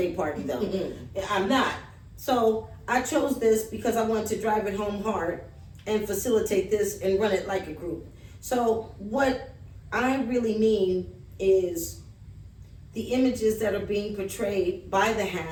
party, though. I'm not. So I chose this because I wanted to drive it home hard and facilitate this and run it like a group. So what I really mean is the images that are being portrayed by the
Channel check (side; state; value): both; identical; correlation 1.00